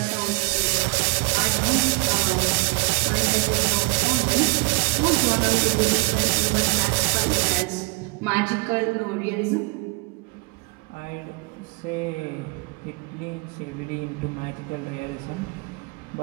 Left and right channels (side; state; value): left; quieter; 30.3 dB